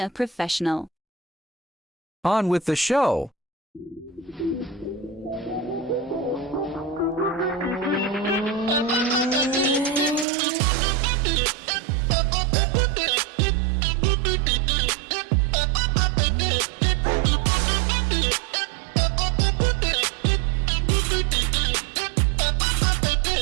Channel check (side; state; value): left; drops out; at 10.2 s